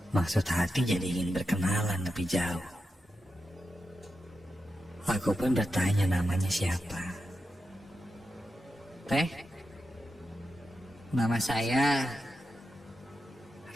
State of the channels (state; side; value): normal; both; correlation 0.89